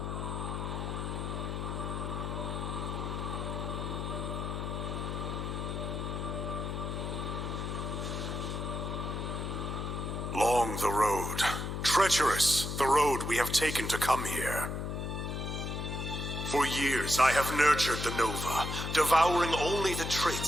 Long the road, treacherous the road we have taken to come here. For years I have nurtured the Nova, devouring only the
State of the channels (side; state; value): left; noise; hum, 3 dB below the sound